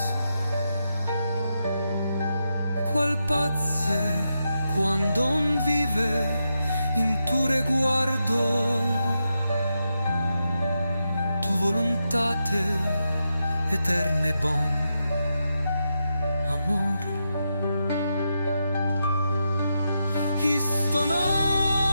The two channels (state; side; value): inverted; both; correlation -0.86